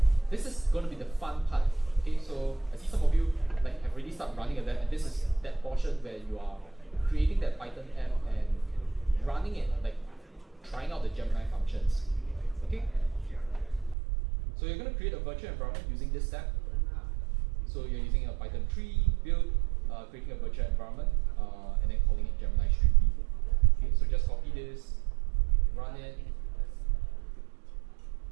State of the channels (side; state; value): left; drops out; at 14.0 s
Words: This is going to be the fun part. Okay, so I see some of you like have already started running that, and this is that portion where you are creating that Python app and running it, like trying out the Gemini functions. Okay, so you're going to create a virtual environment using this step. So you're using a Python 3 build, creating a virtual environment, and then calling it Gemini Street View. Okay, so just copy this, run it.